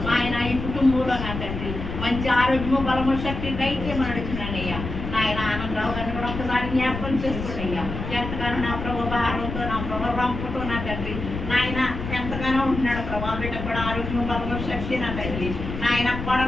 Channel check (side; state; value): left; noise; rumble, 6 dB below the sound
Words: ఆయన. ఈ కుటుంబంలో నా తండ్రి మంచి ఆరోగ్యము బలము శక్తి దయచేయమని అడుగుతున్నానయ్యా నాయన. ఆనందరావు గారిని కూడా ఒకసారి జ్ఞాపకం చేసుకోండియ్యా. ఎంతగానో నా ప్రభు భారంతో నా ప్రభు రంపుతో నా తండ్రి నాయన ఎంతగానో ఉంటున్నాడు ప్రభా. బిడ్డ కూడా ఆరోగ్యం బలము శక్తి నా తండ్రి నాయన.